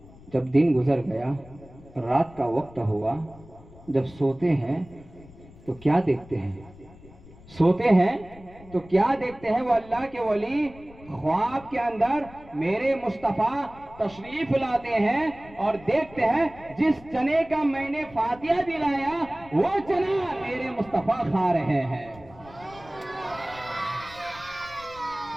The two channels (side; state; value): left; noise; rumble, 21 dB below the sound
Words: जब दिन गुजर गया, रात का वक्त हुआ, जब सोते हैं तो क्या देखते हैं? वो अल्लाह के वली ख्वाब के अंदर मेरे मुस्तफ़ा तशरीफ लाते हैं और देखते हैं जिस चने का मैंने फातिहा दिलाया वो चना मेरे मुस्तफ़ा खा रहे हैं।